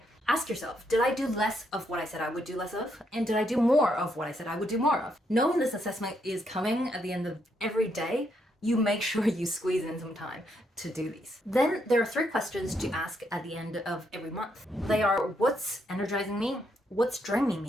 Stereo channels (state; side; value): normal; both; correlation 0.76